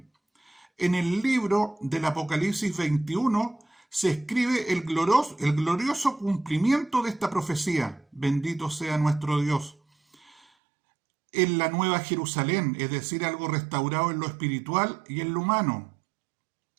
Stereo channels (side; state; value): left; drops out; at 10.4 s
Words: En el libro del Apocalipsis 21 se escribe el glorioso cumplimiento de esta profecía. Bendito sea nuestro Dios. En la nueva Jerusalén, es decir, algo restaurado en lo espiritual y en lo humano,